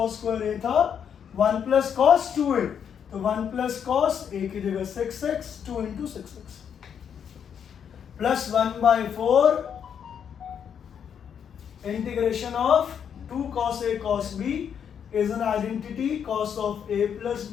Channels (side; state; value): right; quieter; 8.0 dB